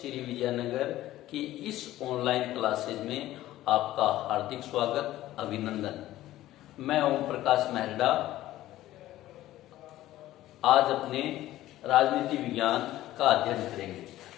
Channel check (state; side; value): quieter; right; 14.9 dB